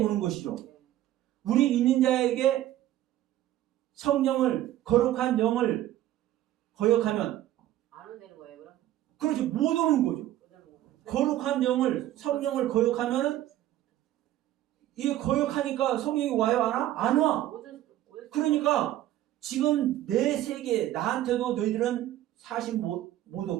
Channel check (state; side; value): quieter; left; 13.7 dB